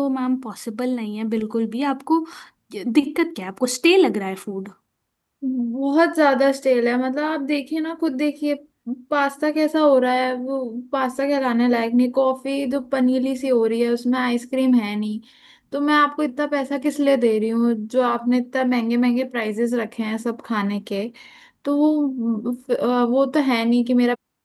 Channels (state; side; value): identical; both; correlation 1.00